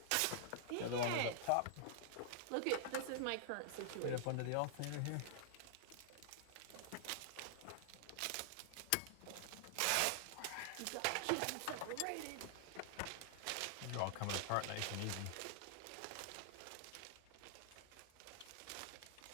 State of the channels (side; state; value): both; different; correlation -0.01